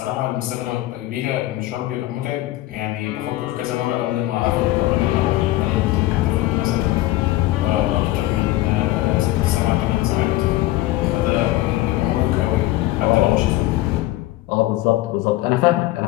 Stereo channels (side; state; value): right; quieter; 16.6 dB